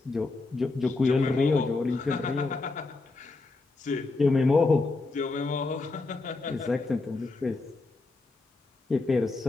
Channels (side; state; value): right; quieter; 3.5 dB